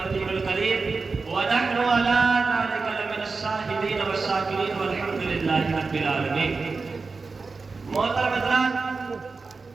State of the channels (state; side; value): quieter; left; 4.3 dB